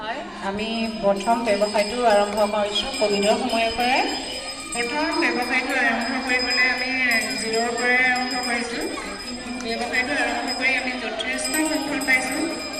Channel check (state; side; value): identical; both; correlation 1.00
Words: আমি প্ৰথম ব্যৱসায়টো আৰম্ভ কৰিছোঁ ক'ভিডৰ সময়ৰ পৰাই। প্ৰথম ব্যৱসায়টো আৰম্ভ কৰিবলৈ আমি জিৰ'ৰ পৰাই আৰম্ভ কৰিছোঁ। ব্যৱসায়টো আৰম্ভ কৰি আমি যথেষ্ট সফল পাইছোঁ।